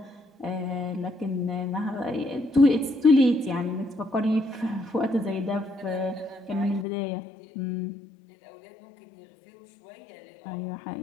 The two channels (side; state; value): right; drops out; at 6.9 s